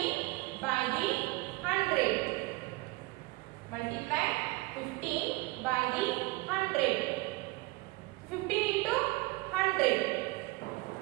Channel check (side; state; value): left; quieter; 22.2 dB